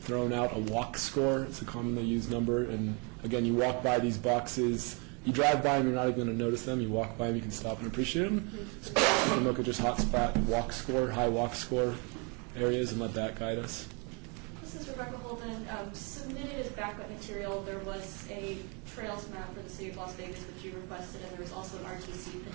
thrown out a walk score. It's a commonly used number. And again, you walk by these boxes, You drive by them, you're not even going to notice them. You walk by them, you can stop and appreciate them. So we can look at just hotspot walk score, high walk score areas, and let that guide us. This is Rebecca Holden. Submitted as backup material, there was a trails map for the city of Las Vegas, which you requested, and there was also an RTC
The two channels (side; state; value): left; quieter; 33.5 dB